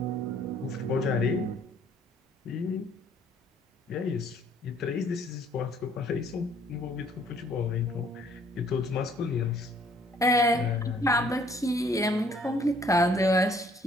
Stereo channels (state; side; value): normal; both; correlation 0.61